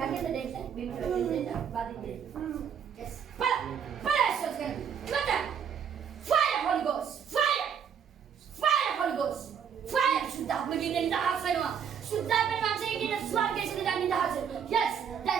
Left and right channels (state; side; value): quieter; left; 7.7 dB